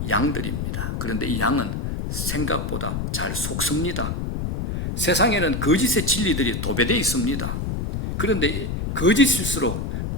양들입니다. 그런데 이 양은 생각보다 잘 속습니다. 세상에는 거짓의 진리들이 도배되어 있습니다. 그런데 거짓일수록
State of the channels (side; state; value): left; noise; rumble, 3 dB below the sound